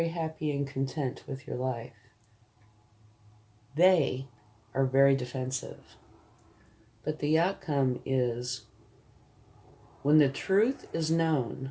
happy and content with your life. They are very defensive. But the outcome is, when the truth is known,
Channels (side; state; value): both; identical; correlation 1.00